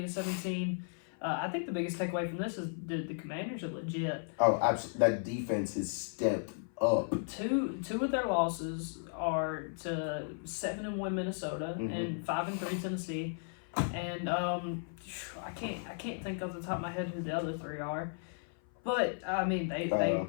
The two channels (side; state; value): right; silent; 54 dB below the other